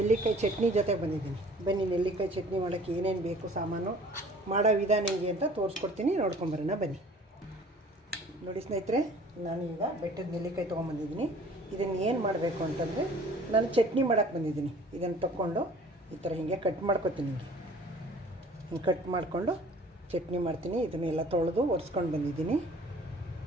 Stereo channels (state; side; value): normal; both; correlation 0.50